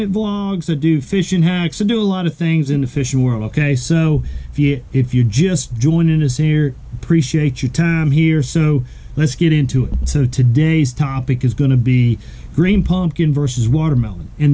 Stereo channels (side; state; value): both; identical; correlation 1.00